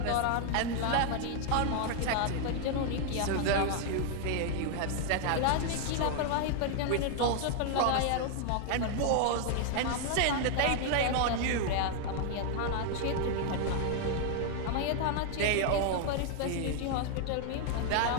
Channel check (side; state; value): both; different; correlation 0.00